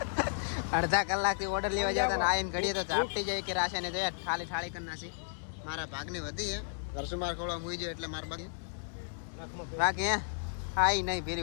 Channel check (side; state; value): right; silent; digital silence